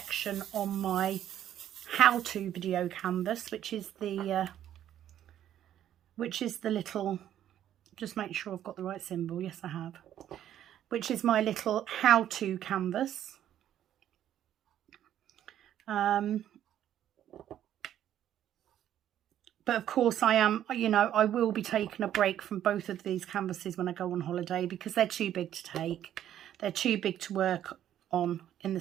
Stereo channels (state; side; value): quieter; left; 11.1 dB